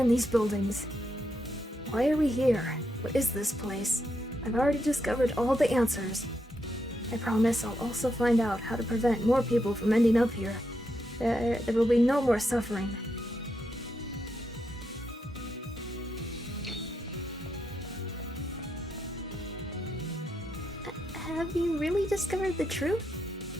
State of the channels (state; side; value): normal; both; correlation 0.82